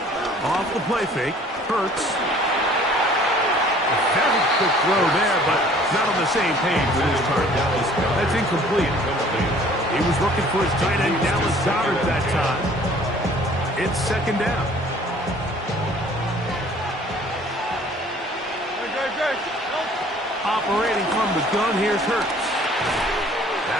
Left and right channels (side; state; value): both; normal; correlation 0.53